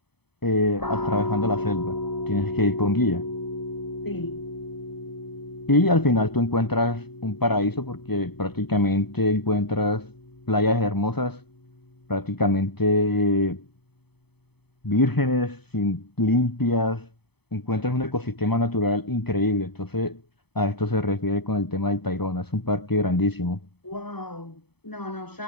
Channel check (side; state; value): right; late; 0.98 ms